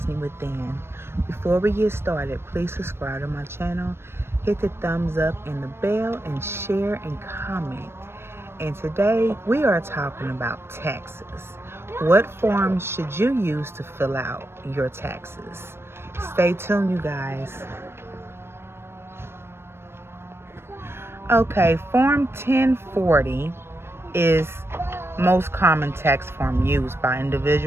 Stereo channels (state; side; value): late; left; 0.12 ms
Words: Within. Before we get started, please subscribe to my channel, hit the thumbs up and the bell, and share and comment. And today we are talking about taxes. What forms should you use to fill out your taxes? Stay tuned, you guys. Okay, Form 1040 is most common tax form used by